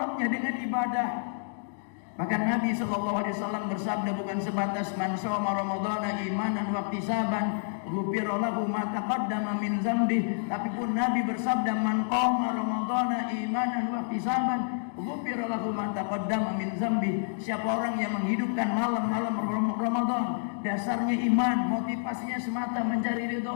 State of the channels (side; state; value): right; silent; digital silence